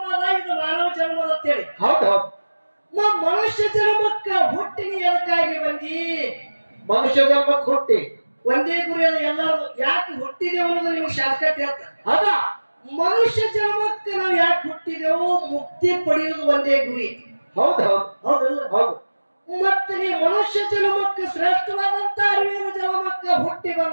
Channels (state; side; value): inverted; both; correlation -1.00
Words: ಇದು ಮಾನವ ಜನ್ಮದ ಅಂತೇಳಿ. ಹೌದು ಮನುಷ್ಯ ಜನ್ಮಕ್ಕ ಹುಟ್ಟಿನ ಎದಕ್ಕಾಗಿ ಬಂದಿ? ಮನುಷ್ಯ ಜನ್ಮಕ್ಕೆ ಹುಟ್ಟಿ ಒಂದೇ ಗುರಿ ಅದು ಎಲ್ಲರೂ. ಯಾಕೆ ಹುಟ್ಟಿದೆ ಅನ್ನೋದು ನಿಮ್ಗೆ ಶಾರ್ಟ್ಕಟ್ ಹೇಳ್ತಾರೆ. ಹೌದಾ ಮನುಷ್ಯ ಜನ್ಮಕ್ಕೆ ನಾವು ಯಾಕೆ ಹುಟ್ಟಿದೆವು? ಮುಕ್ತಿ ಪಡೆಯುವುದು ಒಂದೇ ಗುರಿ. ಹೌದು ಹೌದು ಹೌದಲ್ಲ? ಹೌದು. ಮತ್ತೆ ನೀ ಮನುಷ್ಯ ಜನ್ಮಕ್ಕೆ ಶ್ರೇಷ್ಠವಾದಂತ ಅರಿವಿನ ಜನ್ಮಕ್ಕೆ ಹುಟ್ಟಿ